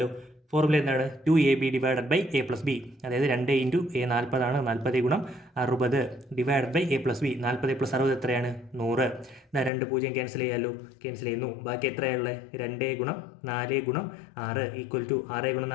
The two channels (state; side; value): drops out; right; at 9.7 s